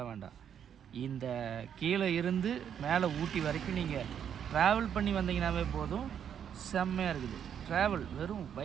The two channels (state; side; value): quieter; left; 8.6 dB